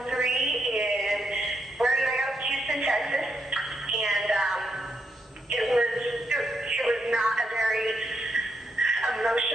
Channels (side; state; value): both; normal; correlation 0.80